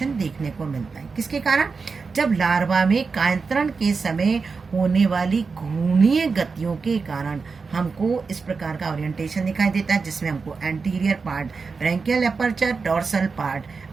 देखने को मिलता है। किसके कारण, जब लार्वा में कायांतरण के समय होने वाली घूर्णीय गतियों के कारण हमको इस प्रकार का ओरिएंटेशन दिखाई देता है, जिसमें हमको anterior part branchial aperture, dorsal part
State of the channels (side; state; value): left; quieter; 4.8 dB